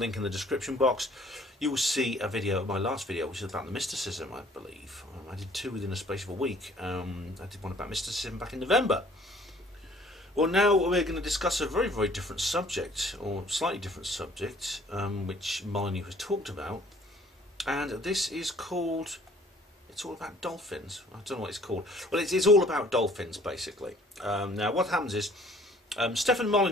in the description box. You will see a video, my last video, which is about the mysticism, I believe. I did two within a space of a week. I did one about mysticism back in November. Well, now we're going to discuss a very, very different subject, or slightly different subject, which Molyneux has talked about. And this is called, it's all about dolphins. I don't know what it's called. Well, it's all about dolphins, basically. Now, what happens is, Stefan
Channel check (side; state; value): both; normal; correlation 0.56